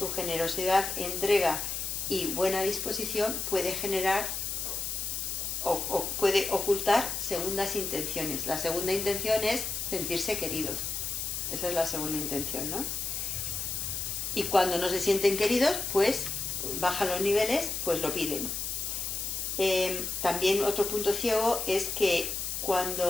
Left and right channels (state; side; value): noise; left; hiss, 3 dB below the sound